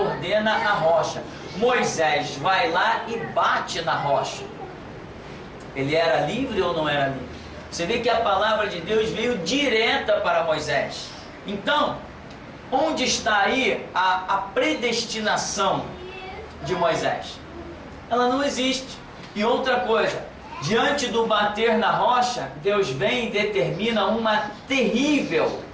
a rocha. Moisés vai lá e bate na rocha. Ele era livre ou não era livre? Você vê que a palavra de Deus veio direta para Moisés. Então, onde está aí a predestinação de Moisés? Ela não existe. E outra coisa, diante do bater na rocha, Deus vem e determina uma terrível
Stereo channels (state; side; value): identical; both; correlation 1.00